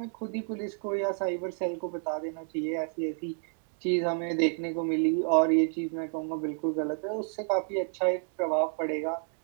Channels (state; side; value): silent; left; 58 dB below the other